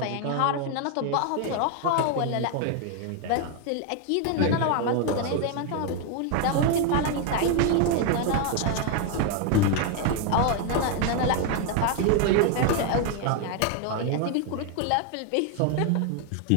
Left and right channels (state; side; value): different; both; correlation 0.01